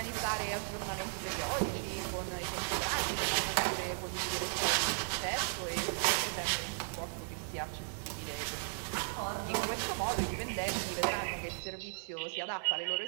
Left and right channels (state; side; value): silent; left; digital silence